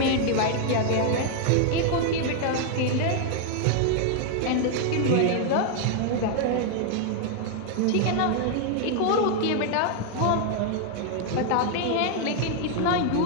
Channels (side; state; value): both; different; correlation 0.00